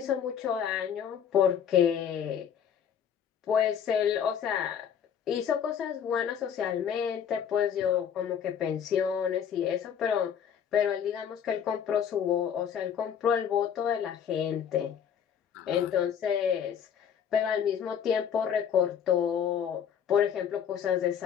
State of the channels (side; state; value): right; quieter; 8.3 dB